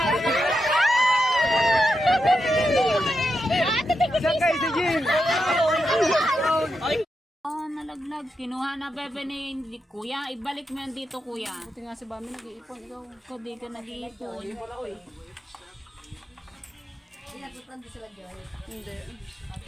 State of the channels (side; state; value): both; normal; correlation 0.86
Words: Saan kayo si Jim? Oh, nalaglag. Kinuha na bebe ni kuya. Ibalik mo yan dito, kuya. Buti nga si Bami nag-iipon. Ikaw. Ikaw di ka nag-iipon. Hindi.